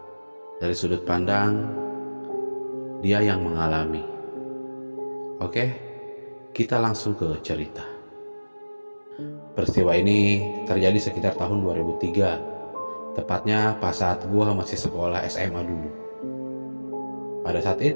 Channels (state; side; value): inverted; both; correlation -1.00